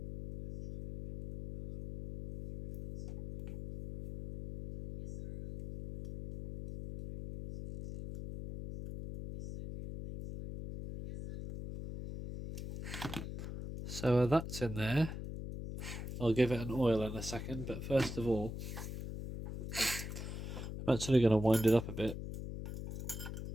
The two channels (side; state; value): left; noise; hum, 7 dB below the sound